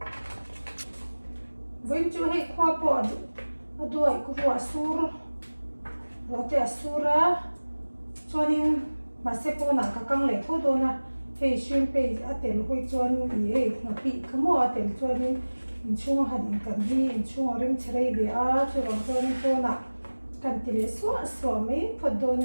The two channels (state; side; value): inverted; both; correlation -1.00